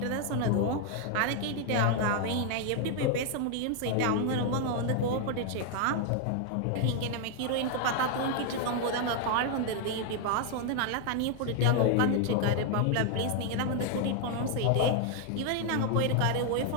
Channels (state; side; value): different; both; correlation 0.00